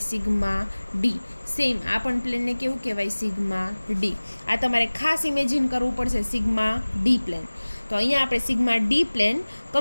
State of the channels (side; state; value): both; inverted; correlation -1.00